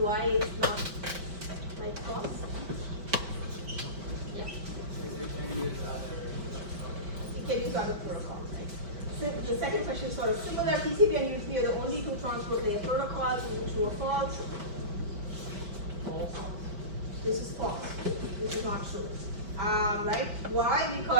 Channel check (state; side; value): late; left; 5.1 ms